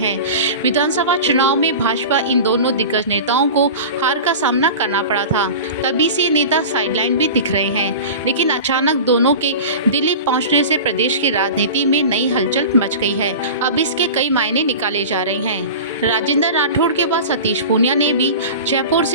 विधानसभा चुनाव में भाजपा इन दोनों दिग्गज नेताओं को हार का सामना करना पड़ा था। तभी से नेता साइडलाइन भी दिख रहे हैं, लेकिन अचानक दोनों के दिल्ली पहुंचने से प्रदेश की राजनीति में नई हलचल मच गई है। अब इसके कई मायने निकाले जा रहे हैं। राजेंद्र राठौड़ के बाद सतीश पूनिया ने भी जयपुर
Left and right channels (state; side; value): inverted; both; correlation -0.32